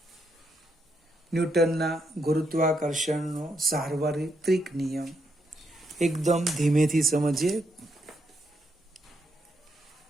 ન્યૂટનના ગુરુત્વાકર્ષણનો સાર્વત્રિક નિયમ. એકદમ ધીમેથી સમજીએ.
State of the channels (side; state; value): both; normal; correlation 0.78